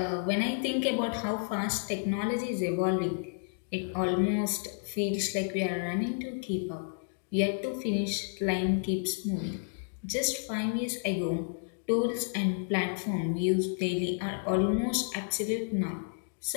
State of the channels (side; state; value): right; silent; digital silence